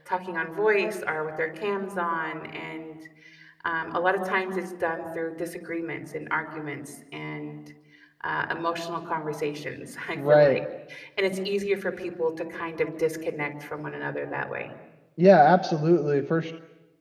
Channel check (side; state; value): both; identical; correlation 1.00